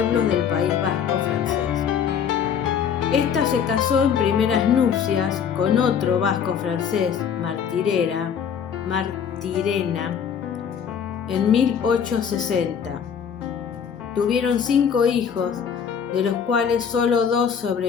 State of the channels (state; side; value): quieter; right; 7.6 dB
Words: del País Vasco francés. Esta se casó en primeras nupcias con otro vasco francés, Martirena, en 1860. Tuvieron 5 hijos, de los cuales solo 2